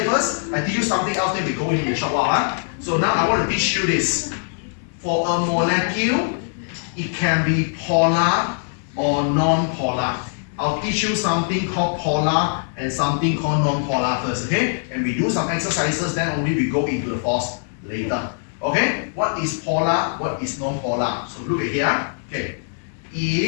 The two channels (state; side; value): silent; right; 64 dB below the other